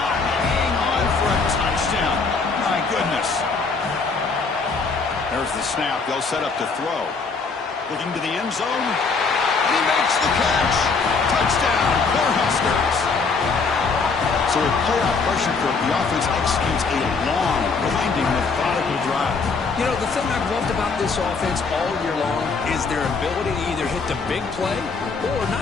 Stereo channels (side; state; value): right; quieter; 4.6 dB